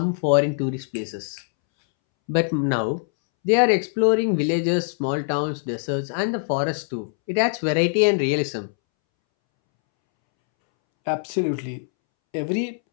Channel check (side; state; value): right; silent; 63 dB below the other